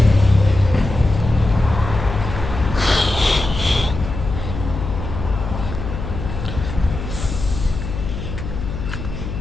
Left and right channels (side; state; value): left; noise; hum, 7 dB below the sound